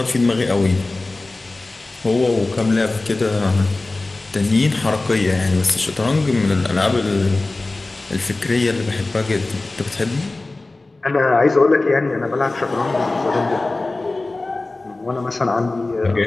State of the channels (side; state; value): right; quieter; 3.1 dB